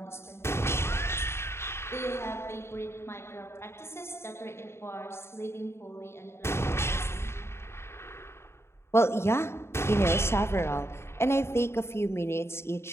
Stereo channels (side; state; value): right; late; 0.12 ms